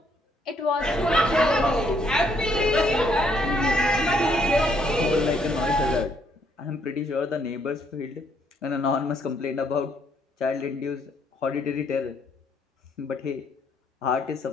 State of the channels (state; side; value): normal; both; correlation 0.69